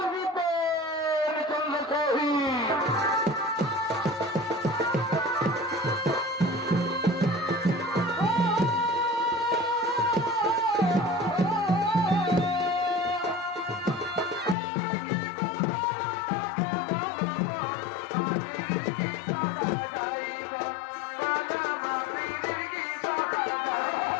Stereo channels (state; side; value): drops out; right; at 14.6 s